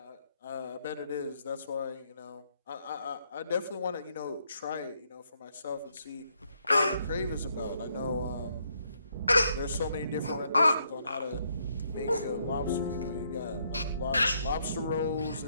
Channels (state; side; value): inverted; both; correlation -0.73